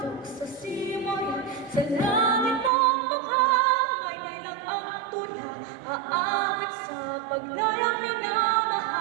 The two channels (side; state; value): left; drops out; at 2.7 s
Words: sa simoy, sa langit mong mukhang may nilang ang tula, aawit sa paglayang